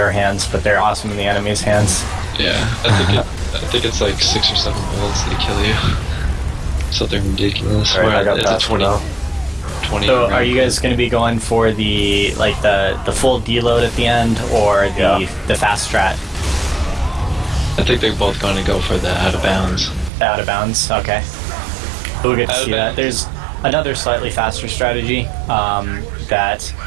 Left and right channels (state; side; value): drops out; left; at 20.1 s